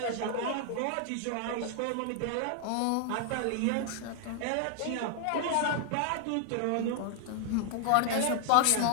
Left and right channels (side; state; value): both; different; correlation 0.00